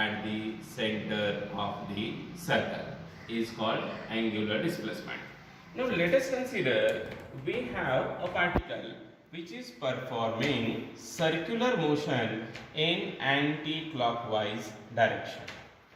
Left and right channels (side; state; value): both; identical; correlation 1.00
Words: the center of the circle is called angular displacement. Now let us consider we have a particle which is performing circular motion in anti-clockwise direction.